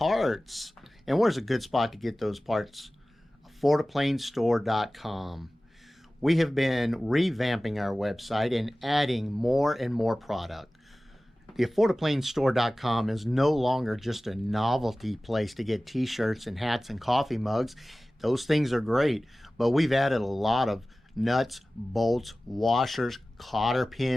And where's a good spot to get those parts? AffordAPlaneStore.com. We have been revamping our website and adding more and more product. The AffordAPlaneStore.com is no longer just a novelty place to get t-shirts and hats and coffee mugs. Those things are great, but we've added a lot of nuts, bolts, washers, cotter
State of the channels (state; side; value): normal; both; correlation 0.97